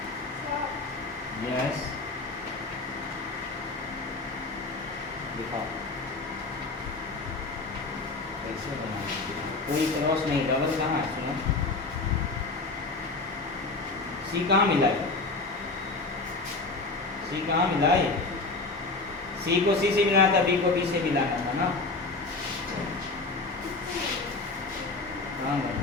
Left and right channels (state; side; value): quieter; right; 3.6 dB